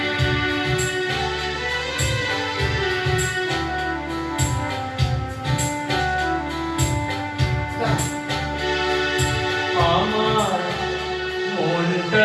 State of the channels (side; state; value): both; identical; correlation 1.00